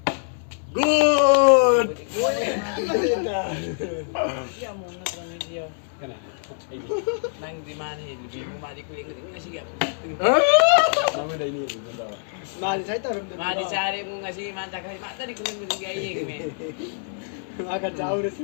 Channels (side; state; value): right; silent; digital silence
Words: Good. Iya mau nonton video. Kana. Nang di mana ini? Bingung mati kuing ini sih gak. Nama dah ini. Mali saya tahu. Mati cari mau ngasih mata kali mata di kuing itu kayak gini. Akan jauh deh